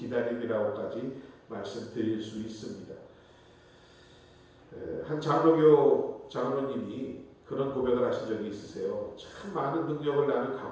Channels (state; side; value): identical; both; correlation 1.00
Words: 말씀드릴 수 있습니다. 한 장로교 장로님이 그런 고백을 하신 적이 있으세요. 참 많은 능력을 나는